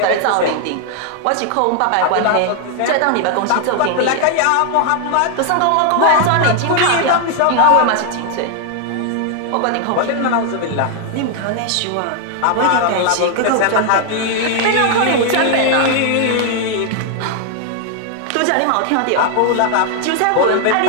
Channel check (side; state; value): both; different; correlation 0.00